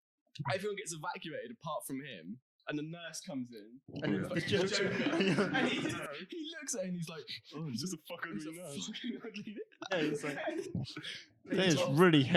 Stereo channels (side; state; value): both; identical; correlation 1.00